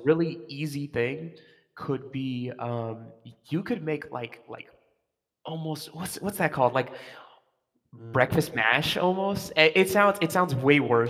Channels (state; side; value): identical; both; correlation 1.00